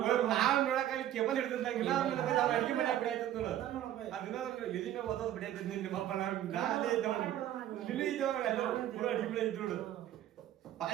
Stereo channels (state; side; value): quieter; left; 12.1 dB